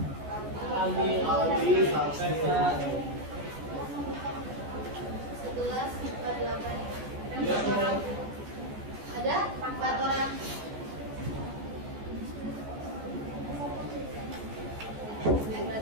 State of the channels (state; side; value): late; left; 14 ms